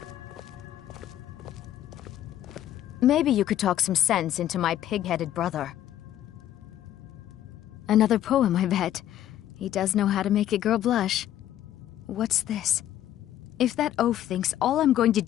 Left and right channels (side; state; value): right; quieter; 12.2 dB